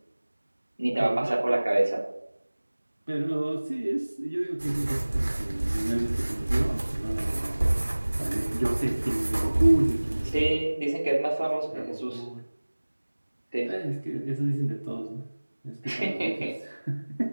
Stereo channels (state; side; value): inverted; both; correlation -1.00